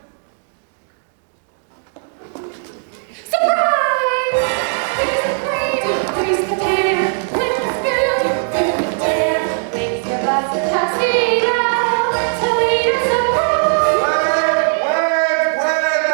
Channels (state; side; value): silent; left; digital silence